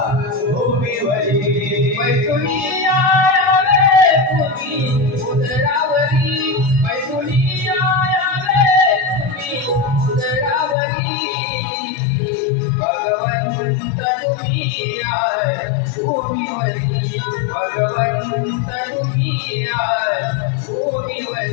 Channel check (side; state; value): right; drops out; at 10.8 s